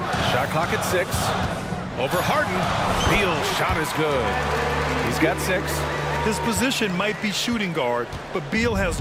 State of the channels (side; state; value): both; identical; correlation 1.00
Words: Shot clock at 6. Over Harden. Beal's shot is good. He's got 6. His position might be shooting guard, but Beal has